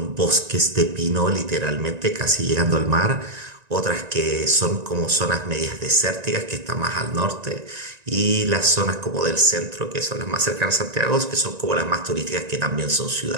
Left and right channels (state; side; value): late; left; 1.9 ms